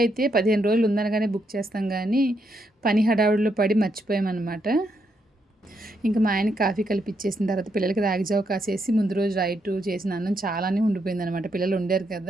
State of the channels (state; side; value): normal; both; correlation 0.78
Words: 15 రోజులు ఉందనగానే బుక్ చేస్తాం గానీ, పని హడావుడిలో పడి మర్చిపోయామనమాట. ఇంక మా ఆయనకి కాఫీ కలిపిచ్చేసిన తర్వాత పిల్లలకి రాగి జావ కాసేసి ముందు రోజు నైటు చేసిన అన్నం చాలానే ఉండిపోయిందనమాట. పిల్లలు వండారు